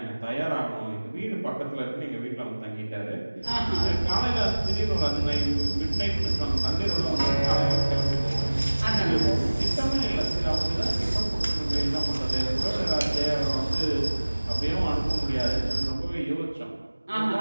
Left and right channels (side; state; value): both; inverted; correlation -1.00